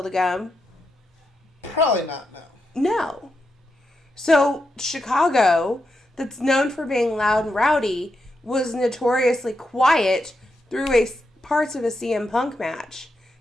to come? Probably not, no. No. So Chicago, that's known for being loud and rowdy, was notoriously quiet through parts of a CM Punk match.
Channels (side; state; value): both; normal; correlation 0.85